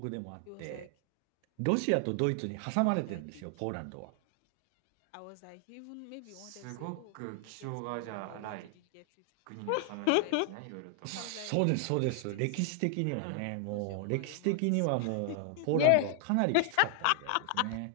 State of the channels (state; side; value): different; both; correlation 0.00